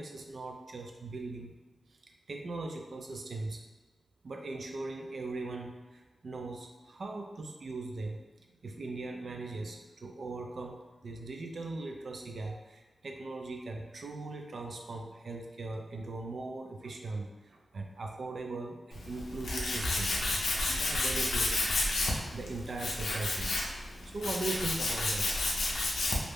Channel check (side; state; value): both; normal; correlation 0.87